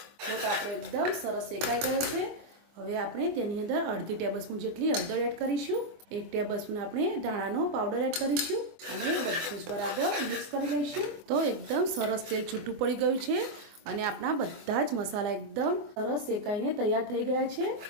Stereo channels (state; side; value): late; left; 24 ms